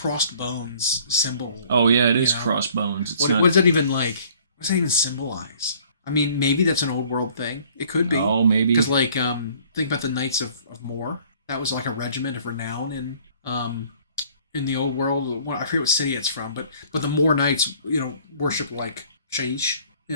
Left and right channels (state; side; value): inverted; both; correlation -0.55